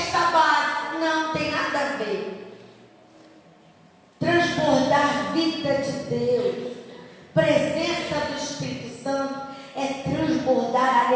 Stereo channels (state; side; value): identical; both; correlation 1.00